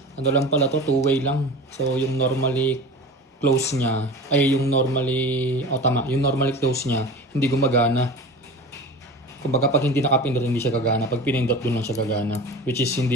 Ano lang pala to, 2-way lang. So yung normally close niya, yung normally close niya, hindi gumagana. Kumbaga pag hindi nakapindot, hindi siya gagana. Pag pinindot, dun lang siya gagana. Which is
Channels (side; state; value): both; normal; correlation 0.35